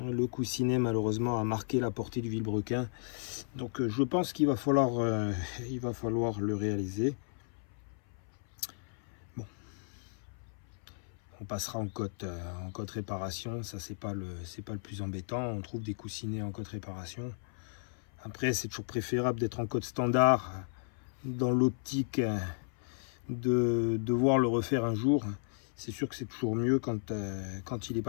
coussinet malheureusement a marqué la portée du vilebrequin. Donc je pense qu'il va falloir le réaliser. Bon, on passera en cote réparation. Ça c'est pas le plus embêtant. On trouve des coussinets en cote réparation. Après c'est toujours préférable d'être en cote standard, dans l'optique de devoir le refaire un jour. C'est sûr que c'est toujours mieux quand il n'est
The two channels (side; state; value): right; silent; 55 dB below the other